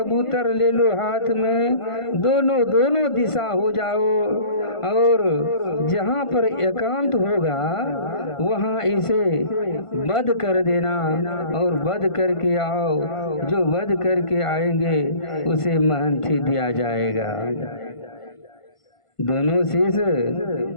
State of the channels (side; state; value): right; late; 1.5 ms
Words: ले लो हाथ में, दोनों दिशा हो जाओ और जहाँ पर एकांत होगा वहाँ इसे वध कर देना और वध करके आओ। जो वध करके आएंगे उसे महंती दिया जाएगा। दोनों शीश